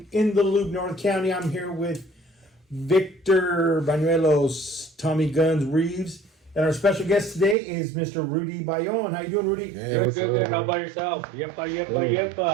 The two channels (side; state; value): left; drops out; at 7.6 s